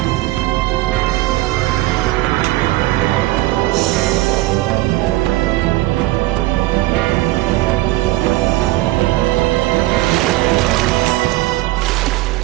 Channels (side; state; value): left; quieter; 18.1 dB